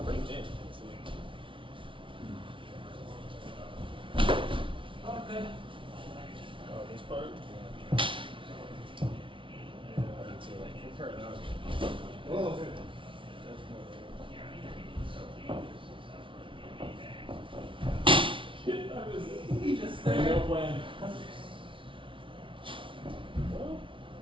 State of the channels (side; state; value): left; late; 0.25 ms